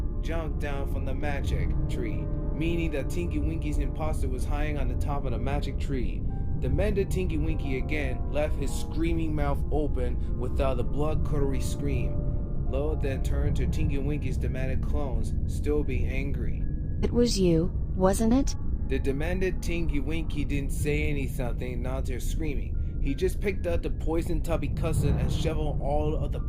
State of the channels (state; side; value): identical; both; correlation 1.00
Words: jumped down from the magic tree, meaning that Tinky Winky's imposter was hiding on the top of the magic tree. The mended Tinky Winky again left his screaming mouth open without a blood-curdling scream. Lo then turned to Tinky Winky's demanded clones, still being angry. It was you, wasn't it? The demanded Tinky Winky didn't say anything, not to screaming. He just picked up the poison tubby custard and shoveled all of the